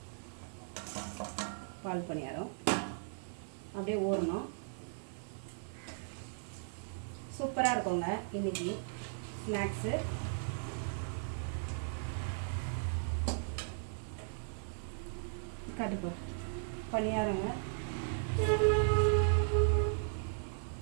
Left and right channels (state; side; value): silent; left; digital silence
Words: பால் பணியாரம் அப்படியே ஊறணும். சூப்பராக இருக்குங்க இன்னைக்கு ஸ்நாக்ஸு. காட்டுப்போ பணியாரங்க.